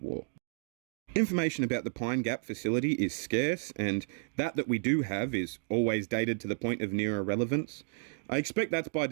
War. Information about the Pine Gap facility is scarce, and that we do have is always dated to the point of near irrelevance. I expect that's by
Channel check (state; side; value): silent; left; digital silence